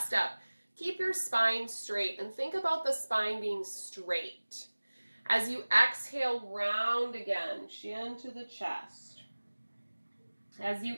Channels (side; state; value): both; inverted; correlation -1.00